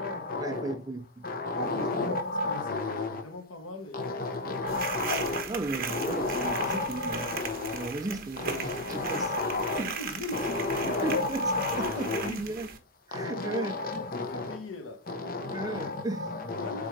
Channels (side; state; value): both; normal; correlation 0.03